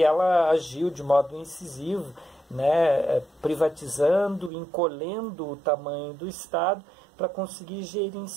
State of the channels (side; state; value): left; drops out; at 4.5 s